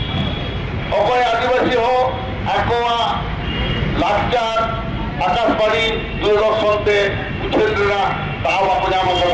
अकय आदिवासी हो आकोआ लाचार आकाशबाणी दूरदर्शनते उठेना दाम ako nyama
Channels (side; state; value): both; identical; correlation 1.00